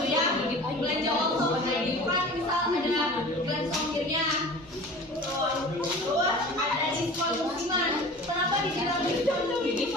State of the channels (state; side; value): normal; both; correlation 0.40